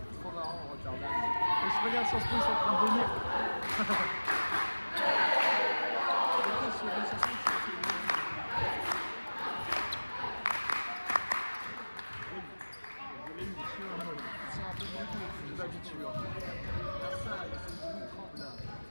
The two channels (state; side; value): inverted; both; correlation -1.00